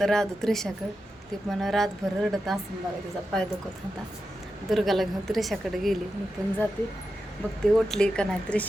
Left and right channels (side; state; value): both; normal; correlation 0.90